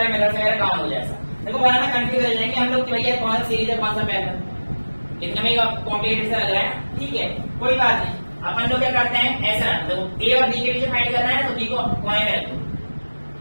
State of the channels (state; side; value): inverted; both; correlation -1.00